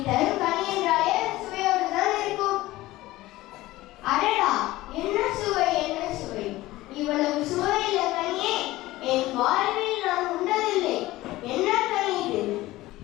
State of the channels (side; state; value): right; quieter; 17.6 dB